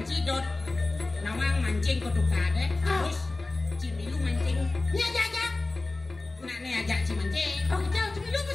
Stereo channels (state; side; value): quieter; right; 3.2 dB